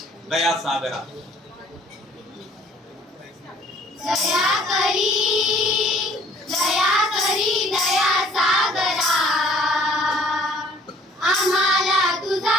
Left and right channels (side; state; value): both; normal; correlation 0.57